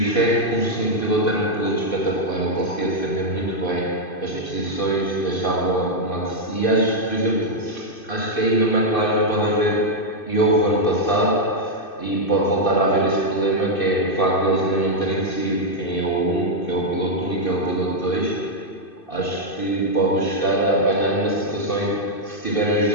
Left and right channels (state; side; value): late; right; 2.6 ms